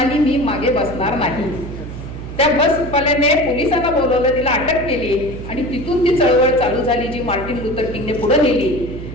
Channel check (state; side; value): noise; right; hum, 10 dB below the sound